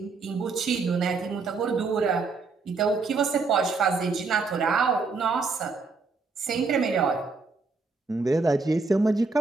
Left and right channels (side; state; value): left; quieter; 4.2 dB